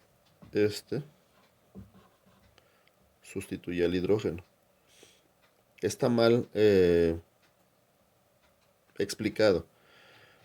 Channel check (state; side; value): identical; both; correlation 1.00